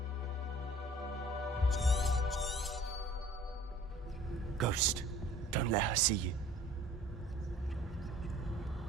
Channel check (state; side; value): normal; both; correlation 0.50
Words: Ghost, don't let her see you.